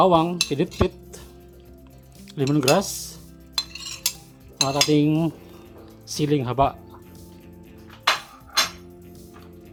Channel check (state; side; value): identical; both; correlation 1.00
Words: pinitpit, lemongrass, at ating siling haba.